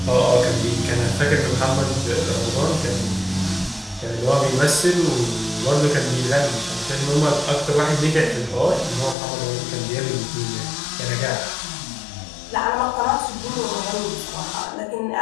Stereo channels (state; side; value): drops out; right; at 9.2 s